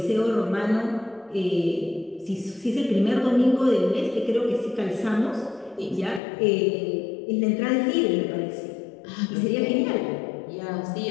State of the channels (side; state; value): right; drops out; at 6.2 s